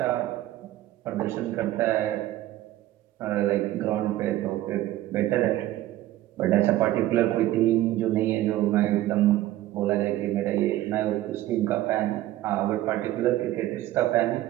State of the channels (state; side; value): quieter; left; 14.9 dB